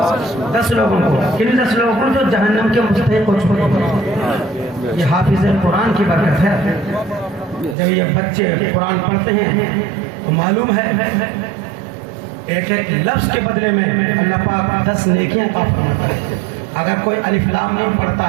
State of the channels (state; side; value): drops out; left; at 7.8 s